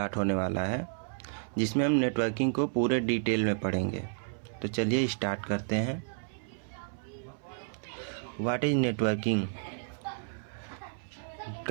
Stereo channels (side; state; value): left; silent; 57 dB below the other